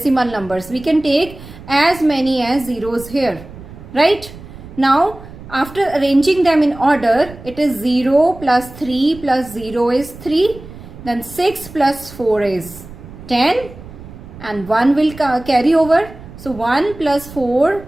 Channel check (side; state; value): right; noise; rumble, 16 dB below the sound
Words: numbers. We can take as many as zeros here, right? Now, after arranging them in order, it is 0 plus 3 plus 0 is 3. Then 6 plus 4 is 10. And 1 will carry over. So 1 plus 4